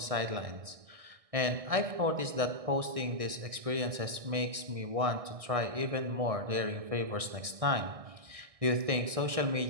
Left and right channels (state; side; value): late; left; 1.6 ms